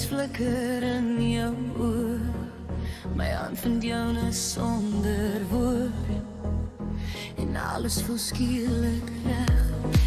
flikker in jou oor. My hand vind joune sonder woord, en alles voel skielik reg.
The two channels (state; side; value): identical; both; correlation 1.00